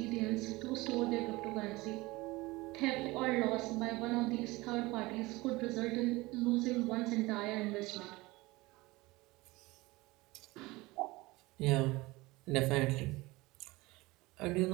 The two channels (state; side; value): quieter; left; 21.3 dB